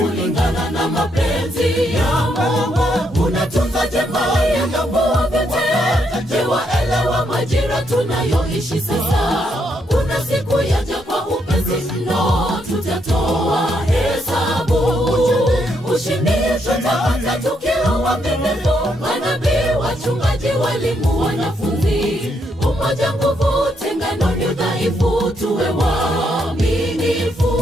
na mapenzi ya Mungu. Unatunza jamaa ya ng'ambo vyote, waelewa majira tunayoishi sasa. Kuna siku yaja kwa upesi mno, tutatoa hesabu. Ushindi tutapata tukiwa waaminifu, manabii, wachungaji, walimu, wanafunzi. Umoja nguvu, tengano ni udhaifu, tuwe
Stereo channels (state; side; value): normal; both; correlation 0.76